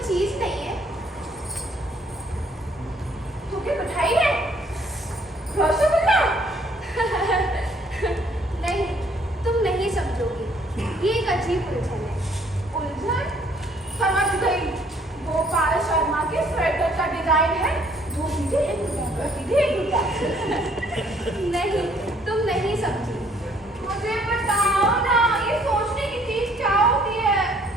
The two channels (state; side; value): normal; both; correlation 0.63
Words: चीज नहीं है। तुम्हें मिठाई है? रसगुल्ला? नहीं, तुम नहीं समझोगी। ये एक अजीब उलझन है। उलझन? समझ गई। गोपाल शर्मा के स्वेटर का डिजाइन है। दो सीधे एक उल्टा, सीधे एक उल्टा। नहीं, तुम नहीं समझी। मुझे बताओ ना, ये सोचने की चीज क्या होती है?